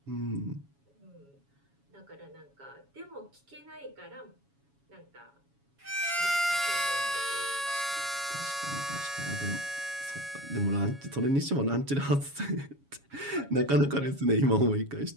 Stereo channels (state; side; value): late; left; 7.2 ms